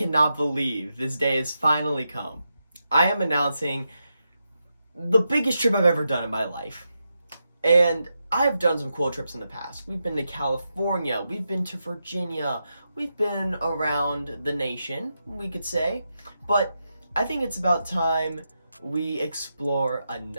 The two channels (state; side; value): inverted; both; correlation -0.86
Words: believe this day has finally come. I am announcing the biggest trip I've ever done in my life. And I've done some cool trips in the past. We've been to California, we've been to Virginia, we've been around the nation, we could say. But I think it's about time we explore